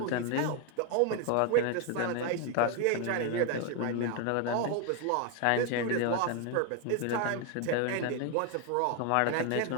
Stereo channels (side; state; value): both; different; correlation 0.01